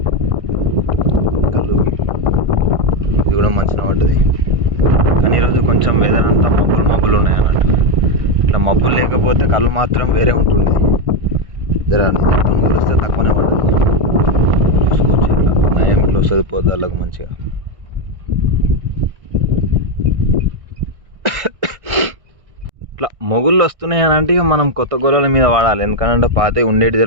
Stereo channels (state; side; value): late; left; 1.6 ms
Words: కళ్ళు ఇది కూడా మంచిగా పడ్డది. కానీ ఈరోజు కొంచెం వెదర్ అంతా మబ్బులు ఉన్నాయి అన్నట్టు. ఇట్లా మబ్బులు లేకపోతే కళ్ళు మాత్రం వేరే ఉంటుంది. జర మొత్తం కొలిస్తే తక్కువనే పడుతుంది. చూసుకోవచ్చు, ఇట్లా నయం ఇట్లా వస్తుంది పొద్దులకు మంచిగా. ఇట్లా మొగుళ్ళు వస్తున్నాయి అని అంటే మనం కొత్త గొర్రెల మీద వాడాలి. ఎందుకంటే పాత ఉండేటి